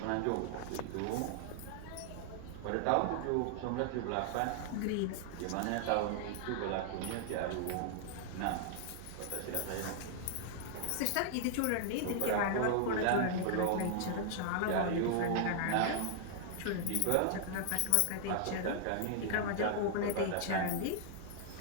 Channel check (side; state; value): both; different; correlation -0.01